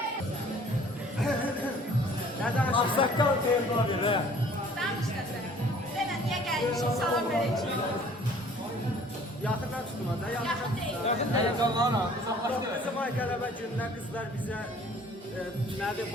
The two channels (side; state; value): both; normal; correlation 0.53